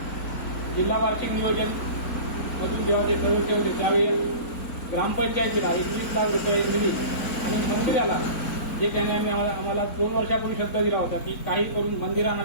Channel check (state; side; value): late; right; 4.0 ms